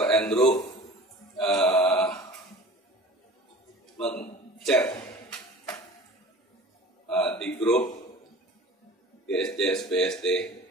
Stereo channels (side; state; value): both; normal; correlation 0.42